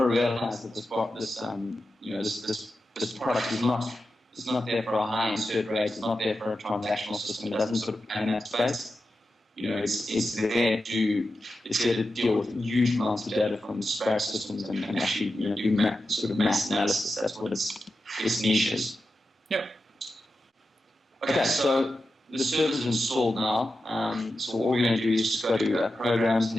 realize that this product is not there for a high insert rate. It's not there for a transactional system. It doesn't sort of play in that space. It's there to deal with huge amounts of data from disparate systems and actually do sort of mass analysis. That's what its niche is. Yep. Okay, so the server's installed now. So all we're going to do is just go to programs, and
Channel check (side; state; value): both; normal; correlation 0.91